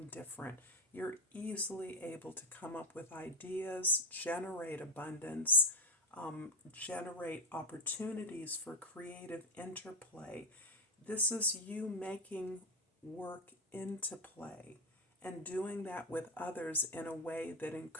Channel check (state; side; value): normal; both; correlation 0.06